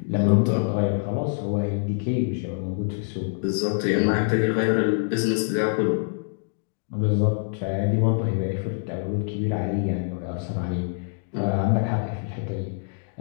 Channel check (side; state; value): right; silent; digital silence